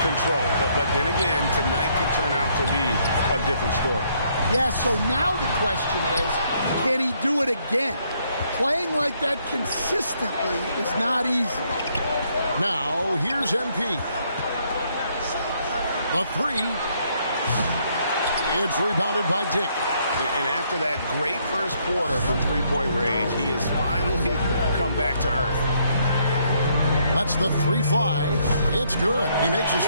control. But then again, tonight could turn out to be a different story. Yeah, so now the question is, can he do it again? Playing like that consistently is not easy. Now, here's MP. The 3. It's rebounded by Dick. And after that great first quarter from three-point range, he has finally come back to earth. Lets the 3 fly. It's good. He makes his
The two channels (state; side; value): inverted; both; correlation -0.70